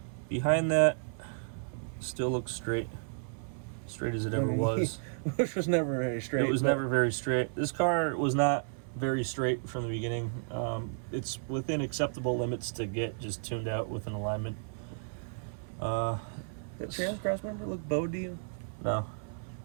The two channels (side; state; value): left; silent; 56 dB below the other